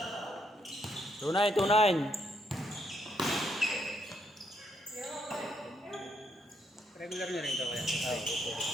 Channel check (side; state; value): both; normal; correlation 0.75